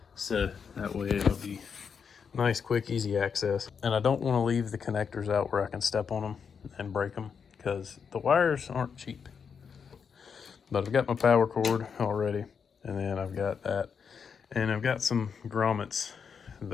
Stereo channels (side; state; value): right; quieter; 6.4 dB